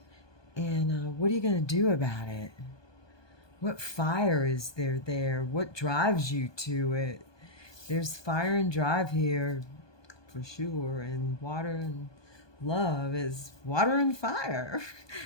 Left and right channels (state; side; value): late; right; 1.2 ms